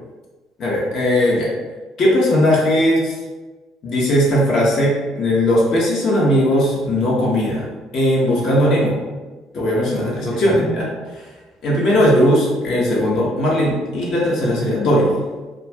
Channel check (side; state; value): both; normal; correlation 0.66